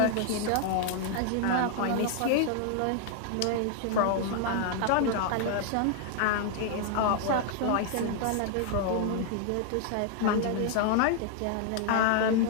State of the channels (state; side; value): different; both; correlation 0.00